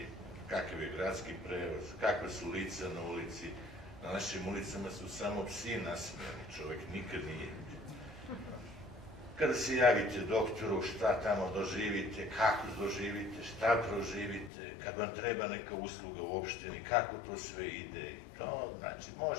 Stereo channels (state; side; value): drops out; right; at 14.5 s